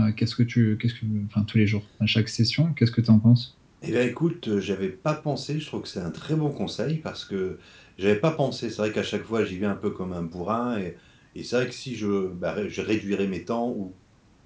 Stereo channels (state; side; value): identical; both; correlation 1.00